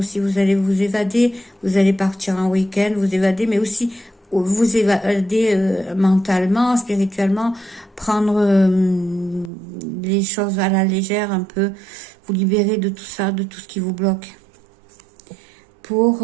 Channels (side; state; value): left; drops out; at 9.5 s